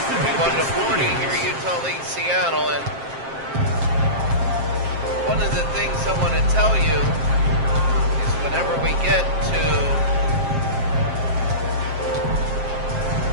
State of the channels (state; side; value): late; left; 7.5 ms